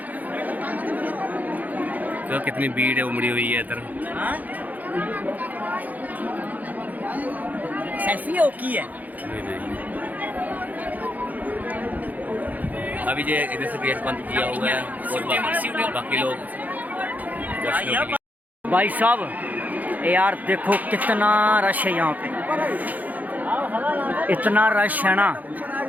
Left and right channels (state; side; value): late; left; 0.080 ms